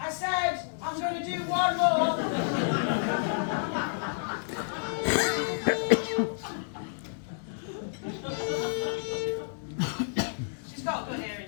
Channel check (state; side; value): silent; right; digital silence